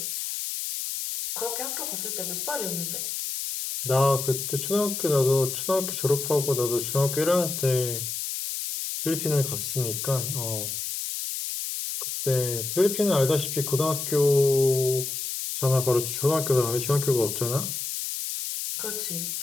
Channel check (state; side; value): noise; left; hiss, 4 dB below the sound